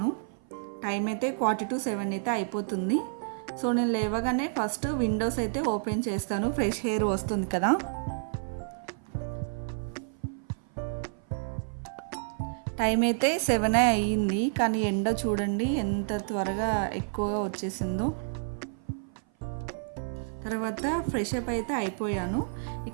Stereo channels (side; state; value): left; silent; 55 dB below the other